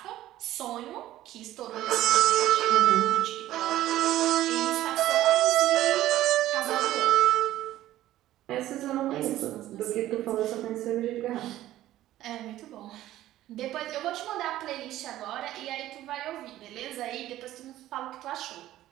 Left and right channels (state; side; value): quieter; left; 14.2 dB